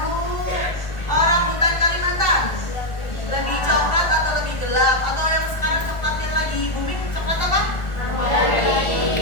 orang hutan Kalimantan lebih coklat atau lebih gelap? Atau yang sekarang coklat yang lagi booming coklat apa?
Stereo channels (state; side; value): late; right; 1.4 ms